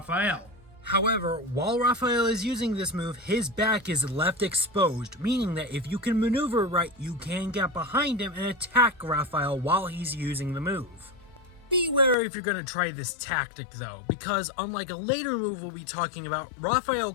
However, while Rafayel is using this move, his back is left exposed, meaning that if you can maneuver right, you can get behind him and attack Rafayel while he's using the move. Beware if you're going to try this tactic though, because unlike a later move we'll be talking about,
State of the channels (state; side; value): drops out; right; at 12.2 s